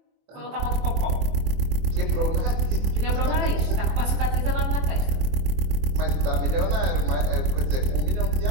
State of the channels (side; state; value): left; late; 24 ms